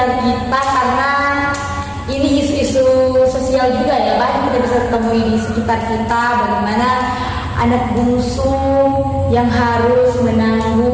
kita, karena ini isu-isu sosial juga ya, banyak kita bisa temui di sekitar kita. Bagaimana anak bungsu yang harus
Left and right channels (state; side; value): identical; both; correlation 1.00